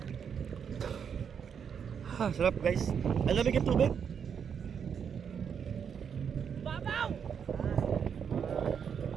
Ha, sarap guys. Ang lamig yung tubig. Babaw!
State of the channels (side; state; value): left; quieter; 7.3 dB